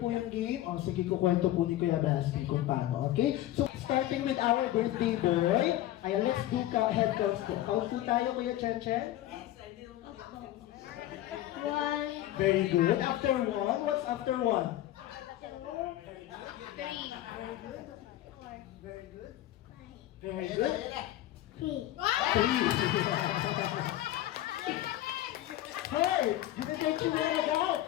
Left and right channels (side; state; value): right; quieter; 14.2 dB